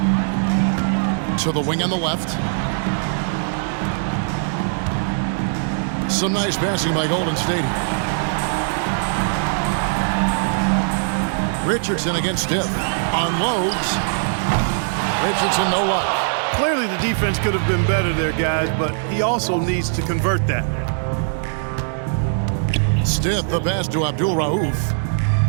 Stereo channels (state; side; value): silent; left; digital silence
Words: To the wing on the left. Some nice passing by Golden State. Richardson against Stiff. Unloads. Richardson, no luck. Clearly the defense could have been better there, guys, but he also needs to convert that. Stiff, the pass to Abdul Rauf.